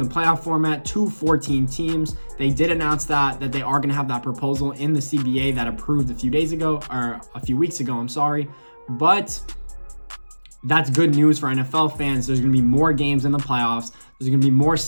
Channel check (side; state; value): both; inverted; correlation -1.00